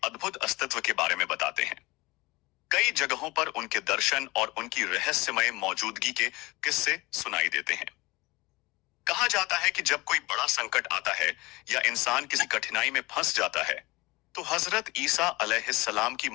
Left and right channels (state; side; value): quieter; right; 22.5 dB